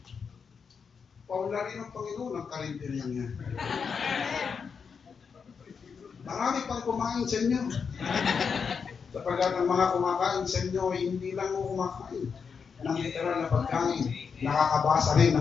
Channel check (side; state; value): right; quieter; 6.0 dB